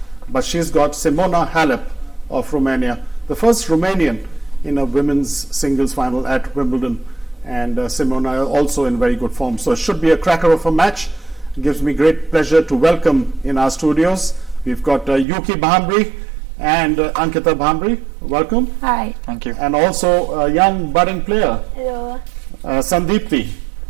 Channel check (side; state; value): left; drops out; at 15.2 s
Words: but she's got Simona Halep of Romania, the first Romanian in a women's singles final at Wimbledon. And Simona also in very good form. So it should be a cracker of a match. It gives me great pleasure to welcome in our studios. We've got Yuki Bhambri and Ankita Bhambri. Welcome. Hi. Thank you. And also a young budding player, Hello. Sandeepti.